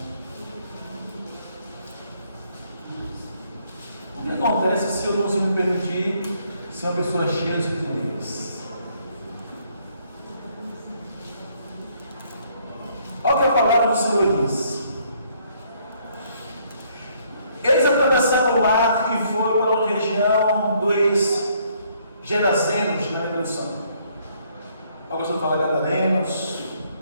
O que acontece se eu não me permitir ser uma pessoa cheia de poderes? Olha o que a palavra do Senhor diz. Eles atravessaram o mar e foram para a região dos Gerazenos, na introdução. Alguns vão falar Gadarenos,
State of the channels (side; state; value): both; inverted; correlation -0.67